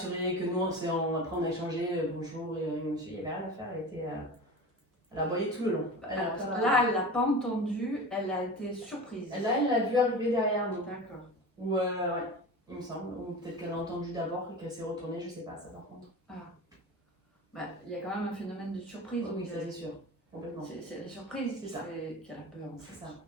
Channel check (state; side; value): normal; both; correlation 0.32